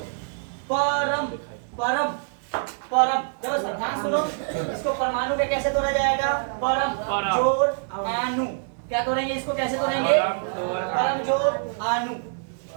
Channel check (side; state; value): left; silent; 61 dB below the other